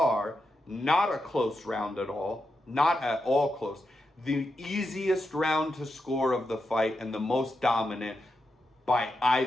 not a close round at all, not at all close. The easiest round to score of the fight and the most dominant by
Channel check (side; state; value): both; normal; correlation 0.86